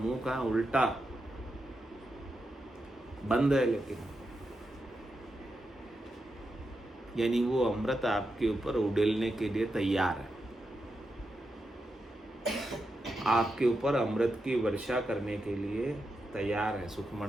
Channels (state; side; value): normal; both; correlation 0.87